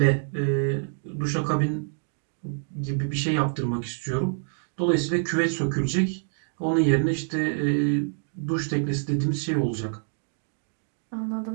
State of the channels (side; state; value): left; silent; digital silence